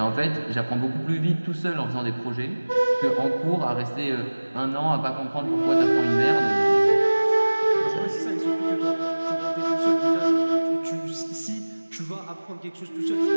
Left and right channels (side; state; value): both; inverted; correlation -1.00